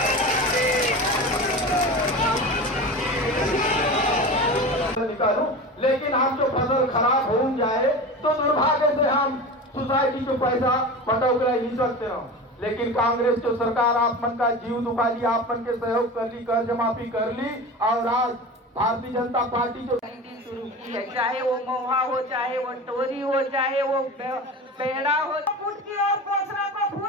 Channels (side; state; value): both; normal; correlation 0.30